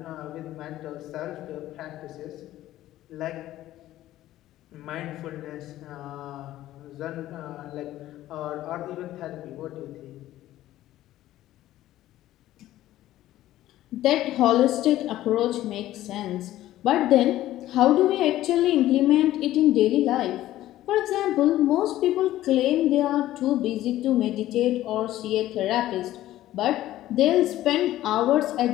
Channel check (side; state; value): right; quieter; 14.4 dB